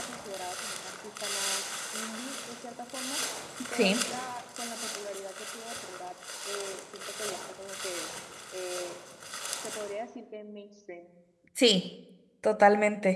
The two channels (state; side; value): identical; both; correlation 1.00